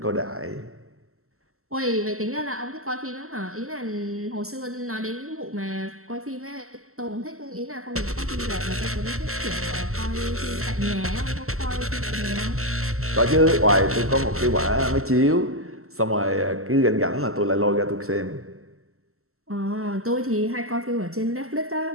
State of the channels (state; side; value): late; left; 0.63 ms